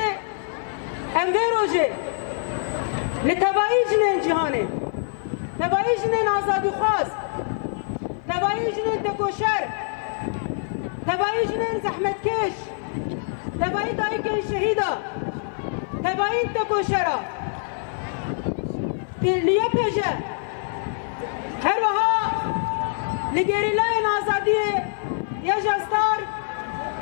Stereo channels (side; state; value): right; silent; 56 dB below the other